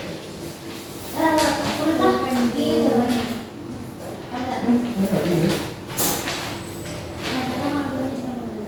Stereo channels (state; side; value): identical; both; correlation 1.00